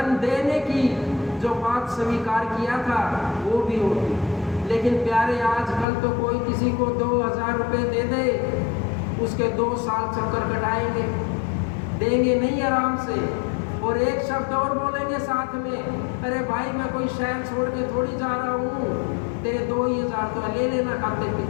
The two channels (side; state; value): right; drops out; at 5.9 s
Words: देने की जो बात स्वीकार किया था वो भी होगी। लेकिन प्यारे, आजकल तो कोई किसी को 2000 रुपये दे दे, उसके 2 साल चक्कर कटाएंगे, देंगे नहीं आराम से। और एक शब्द और बोलेंगे साथ में, अरे भाई मैं कोई शहर छोड़ के थोड़ी जा रहा हूँ, तेरे 2000 तो ले लेना खाते